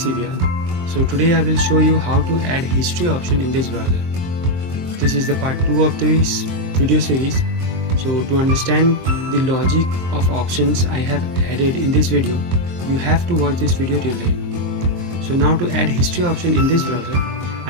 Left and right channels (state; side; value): late; left; 23 ms